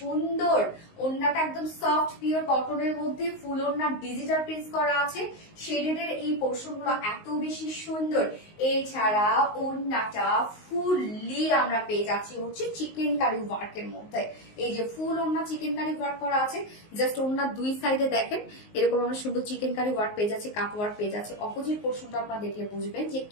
ওড়নাটা একদম সফট পিওর কটনের মধ্যে ফুল ওড়না ডিজিটাল প্রিন্ট করা আছে, শেডেড এর এই পোর্শন গুলো এত বেশি সুন্দর। এছাড়া ওড়নাটা ফুললি আমরা পেয়ে যাচ্ছি হচ্ছে চিকেন কারি ওয়ার্কের মধ্যে। এই যে ফুল ওড়না চিকেন কারি ওয়ার্ক করা আছে, জাস্ট ওড়নার দুই সাইডে দেখেন এরকম আমরা সুন্দর চিকেন কারি ওয়ার্ক পেয়ে যাচ্ছে, কাট ওয়ার্ক পেয়ে যাচ্ছে। অপোজিট পোর্শনটা আপনারা দেখলে বুঝবেন যে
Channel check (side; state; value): right; late; 19 ms